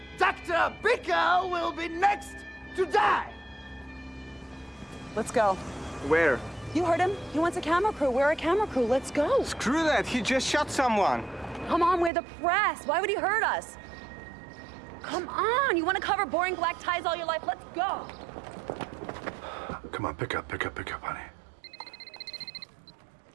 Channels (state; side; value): drops out; left; at 12.1 s